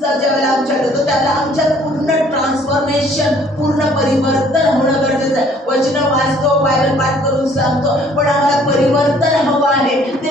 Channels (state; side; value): normal; both; correlation 0.58